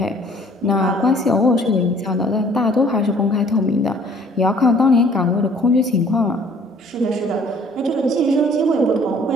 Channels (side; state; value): both; normal; correlation 0.56